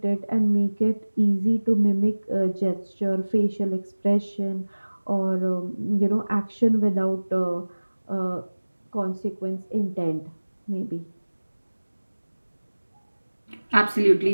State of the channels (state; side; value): inverted; both; correlation -1.00